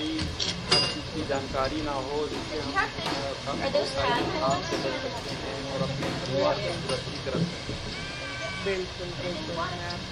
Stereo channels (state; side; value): identical; both; correlation 1.00